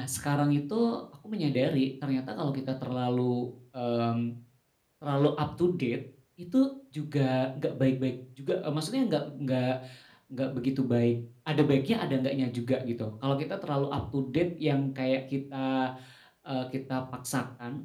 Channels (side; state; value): both; identical; correlation 1.00